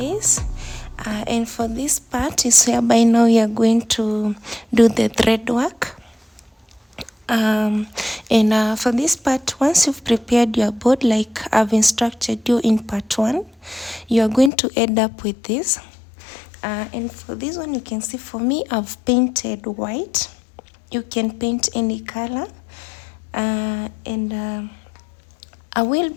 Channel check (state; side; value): drops out; right; at 14.5 s